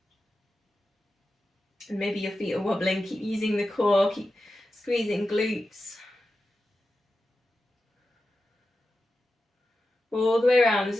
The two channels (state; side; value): normal; both; correlation 0.92